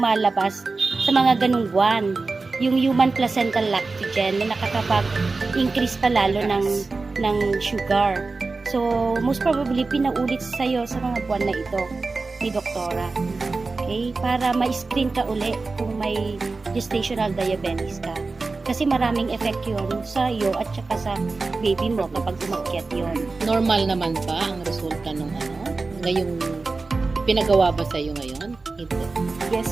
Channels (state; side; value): quieter; left; 3.8 dB